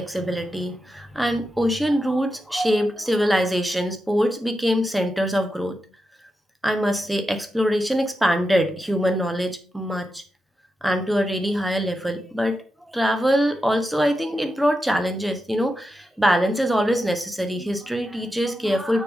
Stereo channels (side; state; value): both; normal; correlation 0.88